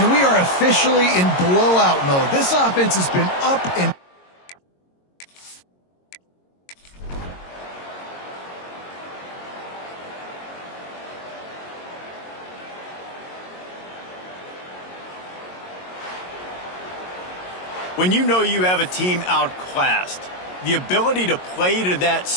we are officially in blowout mode. This offense has been up and when you know you have a team outclassed, the ability to play to that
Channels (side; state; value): right; late; 22 ms